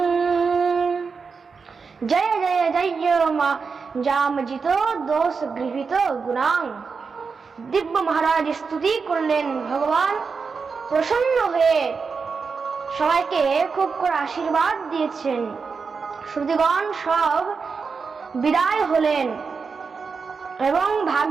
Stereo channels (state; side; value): quieter; left; 5.1 dB